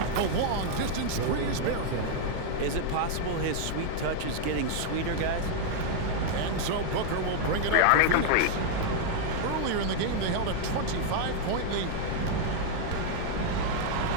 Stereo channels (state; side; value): different; both; correlation 0.00